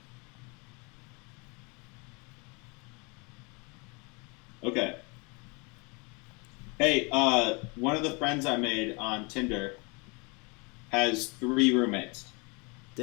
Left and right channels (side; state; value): right; quieter; 30.4 dB